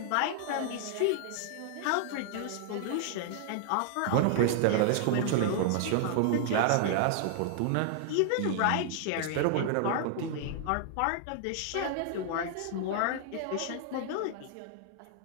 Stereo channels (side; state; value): both; different; correlation 0.00